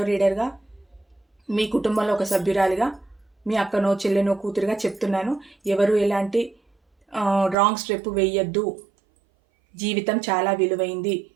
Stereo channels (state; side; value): drops out; left; at 7.6 s